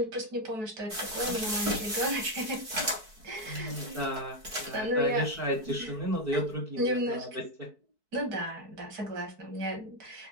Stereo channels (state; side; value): late; left; 4.6 ms